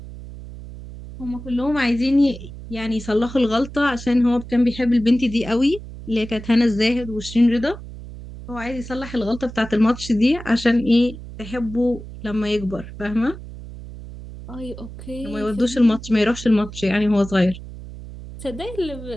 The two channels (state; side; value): noise; right; hum, 13 dB below the sound